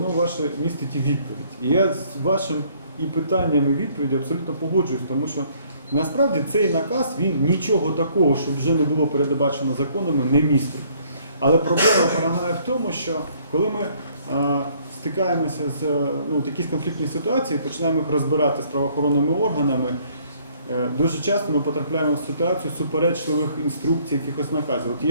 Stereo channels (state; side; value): inverted; both; correlation -0.62